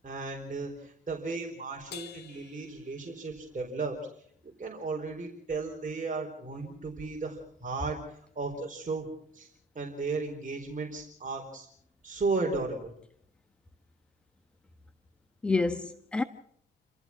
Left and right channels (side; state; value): both; normal; correlation 0.53